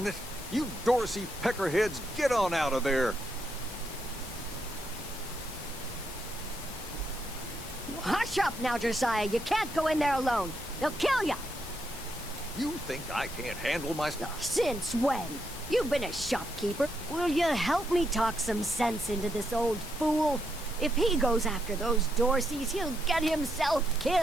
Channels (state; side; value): normal; both; correlation 0.79